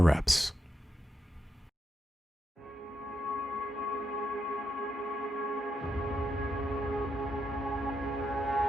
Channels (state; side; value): normal; both; correlation 0.83